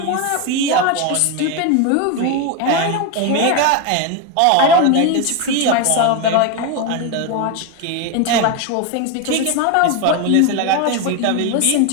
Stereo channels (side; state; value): both; different; correlation 0.02